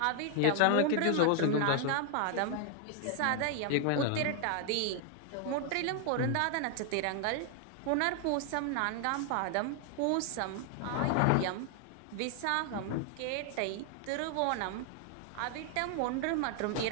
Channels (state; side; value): different; both; correlation 0.00